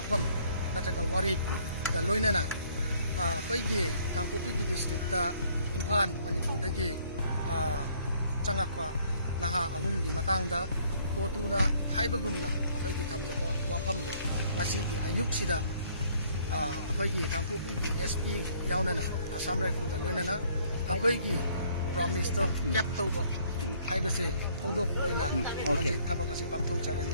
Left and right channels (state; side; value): inverted; both; correlation -0.62